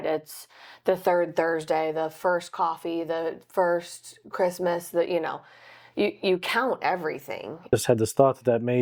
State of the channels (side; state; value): both; identical; correlation 1.00